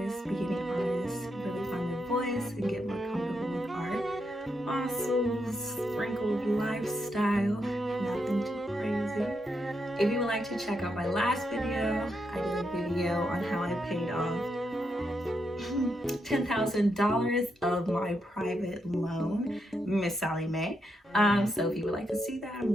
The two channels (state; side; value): normal; both; correlation 0.82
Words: beginning artists, really find their voice and get more comfortable with art. Also, sprinkled lifestyle, nothing too crazy. If you would like to check out my last video, I did a video on how I paid off $10,000 of my private loan, Miss Sally Mae. So if you would like to see that, I'm